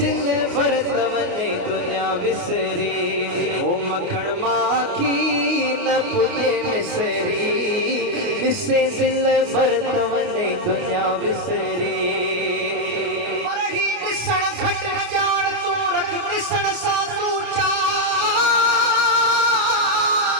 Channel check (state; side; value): late; left; 29 ms